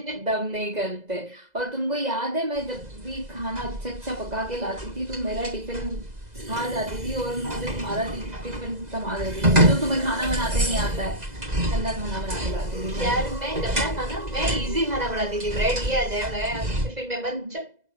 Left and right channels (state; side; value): late; left; 2.0 ms